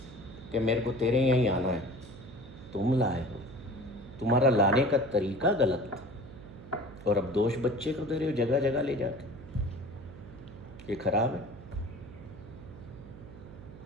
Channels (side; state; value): right; noise; hum, 16 dB below the sound